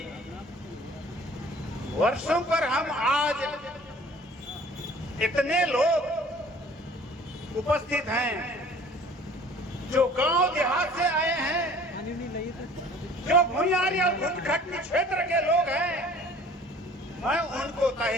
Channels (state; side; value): normal; both; correlation 0.49